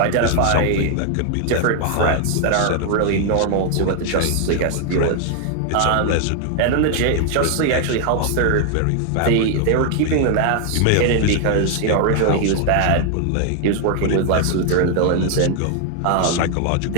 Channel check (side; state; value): both; different; correlation 0.00